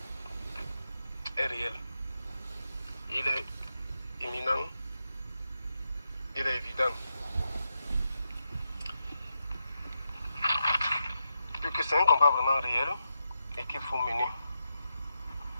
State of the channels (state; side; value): inverted; both; correlation -0.86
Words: est réel. Il est imminent. Il est évident. Que c'est un combat vraiment réel et qu'il faut mener.